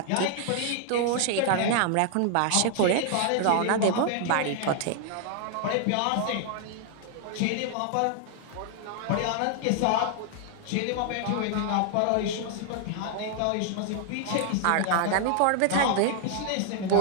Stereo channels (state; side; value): different; both; correlation 0.00